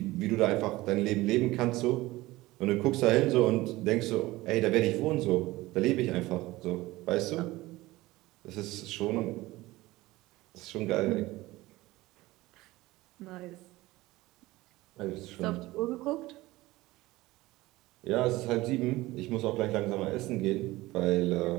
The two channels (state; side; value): quieter; left; 18.9 dB